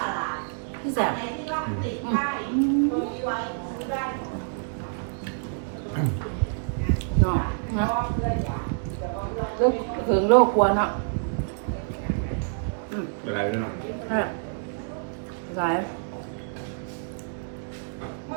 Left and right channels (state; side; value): silent; left; digital silence